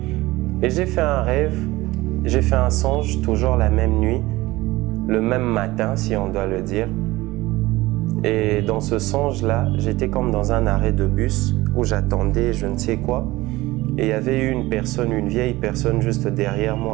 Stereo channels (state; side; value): quieter; left; 19.2 dB